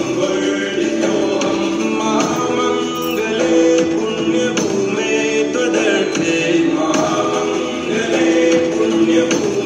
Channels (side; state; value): both; identical; correlation 1.00